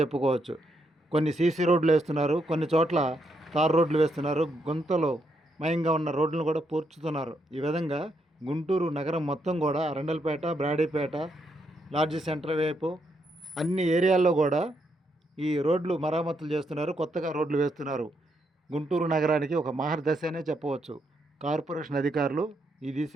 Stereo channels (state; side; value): normal; both; correlation 0.78